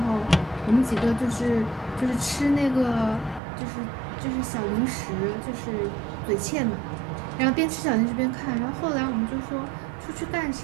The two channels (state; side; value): drops out; left; at 3.4 s